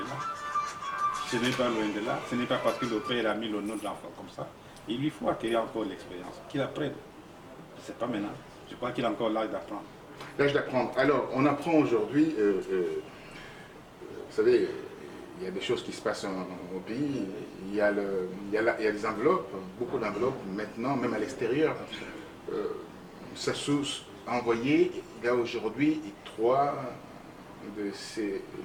là. Ce n'est pas loin de là. Ce n'est pas parce que le père a mis le nom de l'enfant comme ça. Il lui faut acquérir encore l'expérience. Qu'il apprenne. C'est pas maintenant. Je crois qu'il a encore l'âge d'apprendre. L'âge d'apprendre. Alors, on apprend aujourd'hui, vous savez, il y a des choses qui se passent au pays. Il y a des enveloppes, beaucoup d'enveloppes maintenant, même à l'extérieur. Sassou a envoyé, il y a aujourd'hui 3 de ces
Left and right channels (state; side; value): identical; both; correlation 1.00